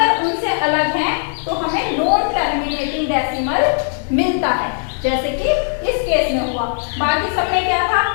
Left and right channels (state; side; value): silent; right; digital silence